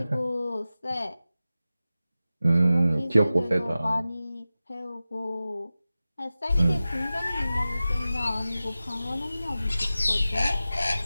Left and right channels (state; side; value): inverted; both; correlation -0.95